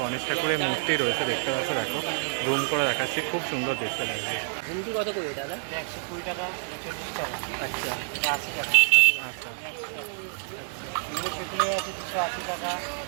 গণেশ ঠাকুরের মূর্তি রয়েছে দেখতে পাচ্ছ দেখো, জুম করে দেখাচ্ছি, খুব সুন্দর দেখতে লাগছে। ঝুমকি কত করে দাদা? 120 টাকা 40 টাকা। আচ্ছা 80 টাকা। আচ্ছা এগুলো সেগুলো আছে 280 টাকা,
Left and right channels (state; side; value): silent; left; 56 dB below the other